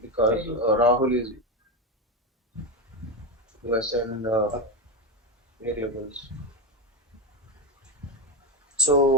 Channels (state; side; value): normal; both; correlation 0.12